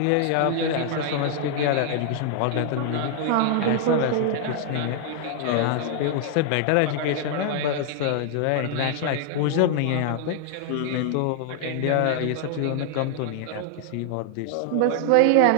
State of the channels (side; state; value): both; different; correlation 0.00